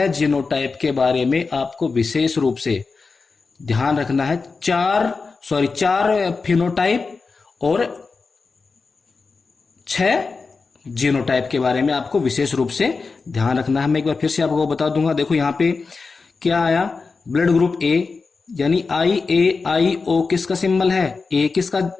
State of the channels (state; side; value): quieter; right; 4.4 dB